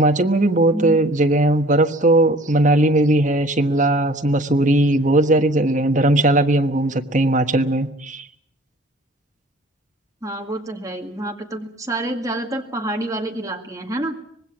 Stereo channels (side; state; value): both; normal; correlation 0.50